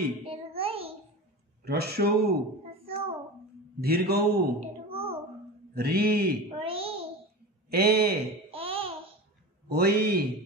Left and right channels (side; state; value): both; normal; correlation 0.29